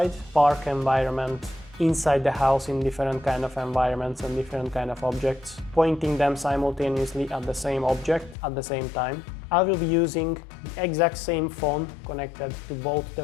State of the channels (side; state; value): right; drops out; at 8.3 s